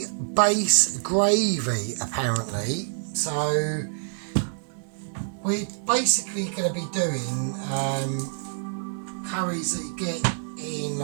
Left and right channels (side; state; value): left; silent; digital silence